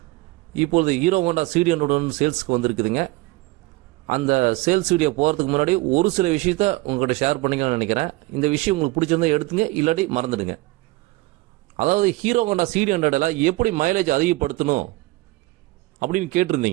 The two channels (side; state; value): left; quieter; 21.1 dB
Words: இப்பொழுது ஹீரோ ஹோண்டா CD100 சேல்ஸுக்கு வந்திருக்குதுங்க. அந்த சேல்ஸ் வீடியோ போகிறதுக்கு முன்னாடி ஒரு சில விஷயத்த உங்கள்கிட்ட ஷேர் பண்ணிக்கலாம்னு நினைக்கிறேன். இந்த விஷயம் உங்களுக்கு பிடிச்சிருந்தா எடுத்துங்க, இல்லாட்டி மறந்துடுங்க. அதாவது ஹீரோ ஹோண்டா CD100 எப்படி மைலேஜ் அதிகப்படுத்தணும் அப்படின்னு